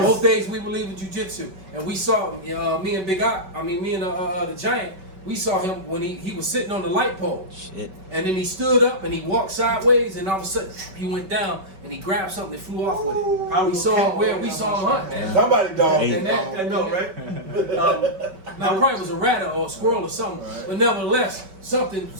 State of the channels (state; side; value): late; left; 5.2 ms